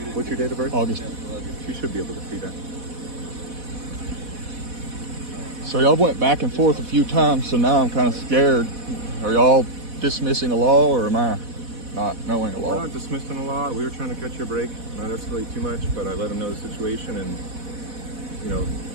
What's your date of birth? August. You should be able to see that. So y'all went back and forth a few times, so now I'm kind of scared. Are y'all dismissing a law, or am I not knowing a We're law? not dismissing the law. We were trying to catch your break. Not escalate too much, but I let him know the situation, and you know,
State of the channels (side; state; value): left; late; 4.1 ms